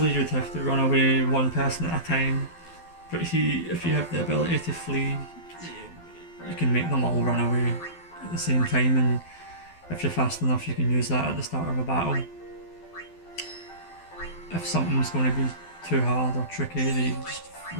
you'd have to run away one person at a time, but if you have the ability to flee, you can make them all run away at the same time, and if you're fast enough you can use that at the start of a battle. If something's going to be too hard or tricky, you just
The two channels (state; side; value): late; right; 12 ms